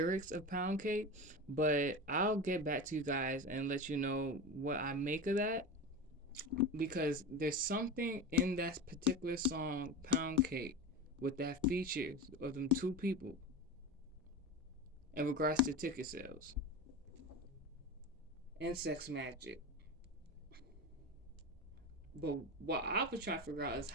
of Pound Cake, but I'll get back to you guys and let you know what I make of that because there's something in that particular song, Pound Cake, with that features of them two people in regards to ticket sales and sex magic. But what I was trying to figure out is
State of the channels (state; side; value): normal; both; correlation 0.25